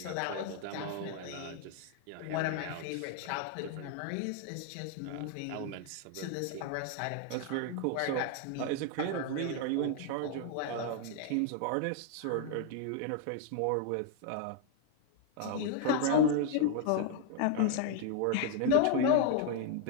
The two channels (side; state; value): both; different; correlation 0.00